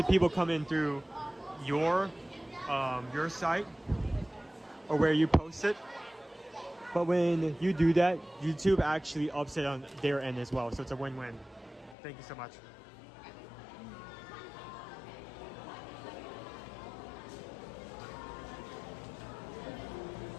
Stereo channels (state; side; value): drops out; right; at 12.0 s